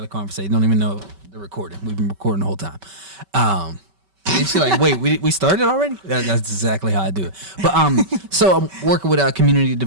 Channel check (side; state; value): left; late; 5.2 ms